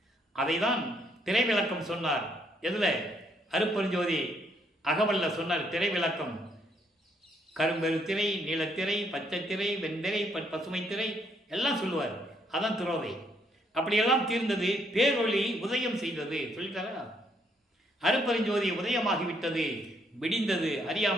அதை தான் திரை விளக்கம் சொன்னார். எதுல? அருட்பெருஞ்சோதி அகவல்ல சொன்னார் திரை விளக்கம். கரும்பெரு திரை, நீலத்திரை, பச்சை திரை, வெண்திரை, பசுமை திரை எல்லாம் சொல்லுவார். அதான் துரோதை. அப்படியெல்லாம் தீர்ந்தது, பேரொளி உதயம் செய்தது சொல்லிட்டாரா. அருட்பெருஞ்சோதி உதயமாகிவிட்டது, விடிந்தது,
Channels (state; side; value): normal; both; correlation 0.71